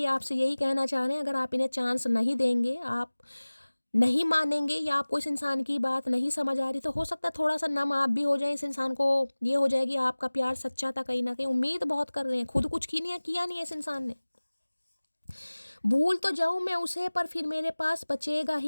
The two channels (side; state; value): both; inverted; correlation -1.00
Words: आपसे यही कहना चाह रहे हैं, अगर आप इन्हें चांस नहीं देंगे, आप नहीं मानेंगे, या आपको इस इंसान की बात नहीं समझ आ रही, तो हो सकता है थोड़ा सा नम आप भी हो जाए। इस इंसान को ये हो जाएगी आपका प्यार सच्चा था कहीं ना कहीं। उम्मीद बहुत कर रहे हैं, खुद कुछ किया नहीं है इस इंसान ने। भूल तो जाऊं मैं उसे, पर फिर मेरे पास बचेगा